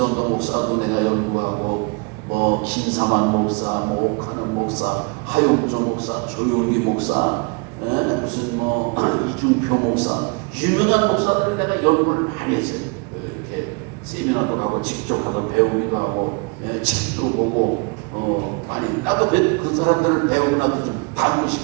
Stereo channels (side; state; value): left; quieter; 31.7 dB